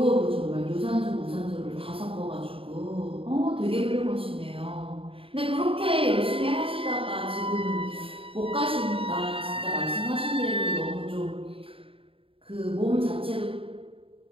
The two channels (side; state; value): left; late; 0.27 ms